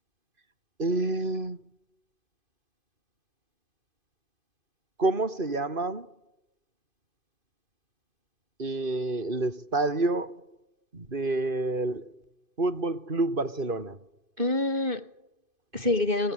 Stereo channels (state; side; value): late; left; 2.5 ms